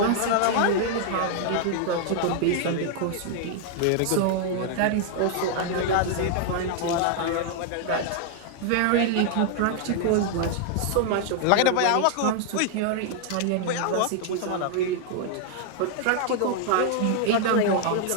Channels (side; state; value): both; different; correlation 0.00